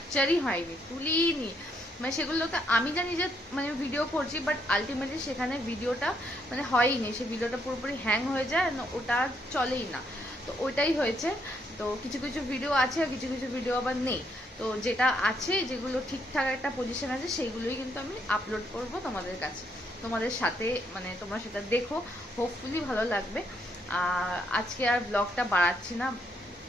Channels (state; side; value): normal; both; correlation 0.74